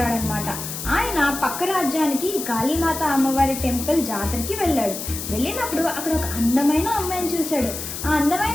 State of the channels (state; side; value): noise; left; hiss, 7 dB below the sound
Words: అనమాట. ఆయన పక్క రాజ్యానికి కాళీమాత అమ్మవారి టెంపుల్ జాతరకి వెళ్ళాడు. వెళ్ళినప్పుడు అక్కడ ఒక అందమైన అమ్మాయిని చూశాడు. ఆ